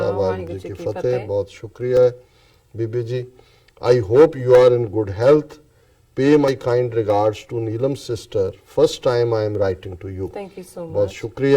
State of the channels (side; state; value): both; identical; correlation 1.00